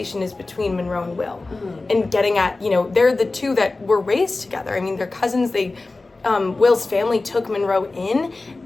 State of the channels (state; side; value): quieter; right; 3.4 dB